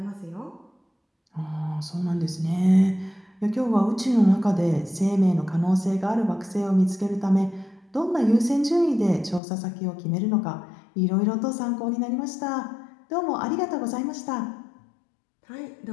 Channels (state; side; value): drops out; right; at 9.4 s